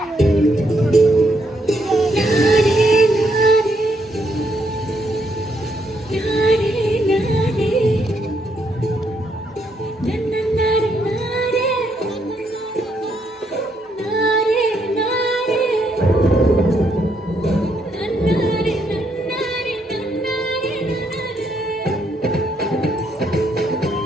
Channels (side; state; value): both; normal; correlation 0.75